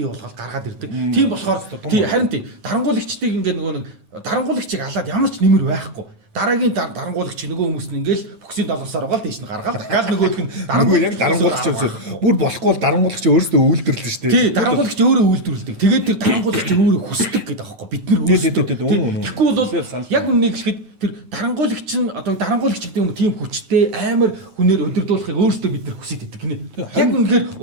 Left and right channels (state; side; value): late; left; 9.3 ms